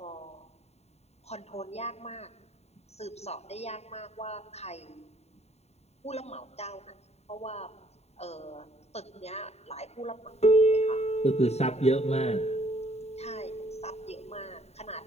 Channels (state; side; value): late; right; 0.31 ms